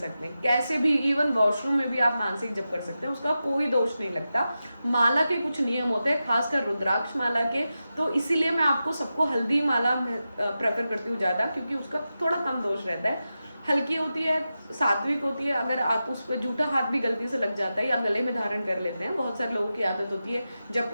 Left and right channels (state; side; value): inverted; both; correlation -0.91